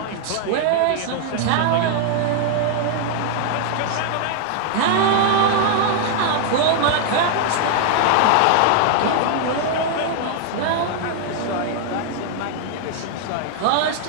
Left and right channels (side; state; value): both; different; correlation 0.00